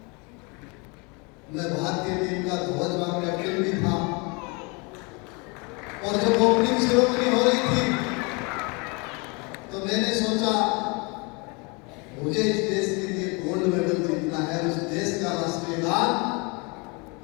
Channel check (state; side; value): quieter; right; 30.0 dB